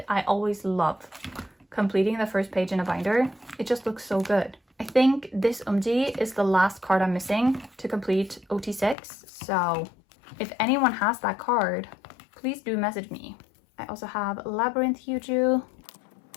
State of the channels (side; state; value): right; drops out; at 9.0 s